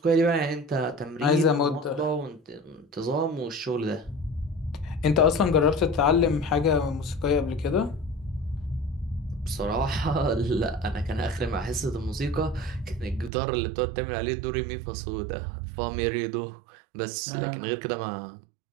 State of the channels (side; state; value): left; drops out; at 13.3 s